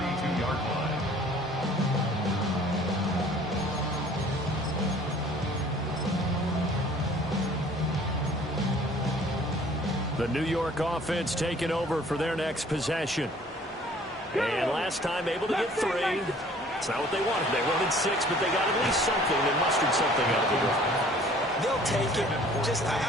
line. The New York offense taking over for their next possession. And last time able to get 3. It's not what they wanted. They wanted 6, but they got at least something. They mustered something out of it. They'll take it. Just,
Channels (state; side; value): normal; both; correlation 0.53